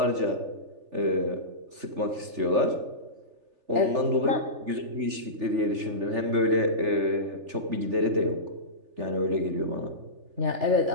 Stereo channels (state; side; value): late; left; 3.4 ms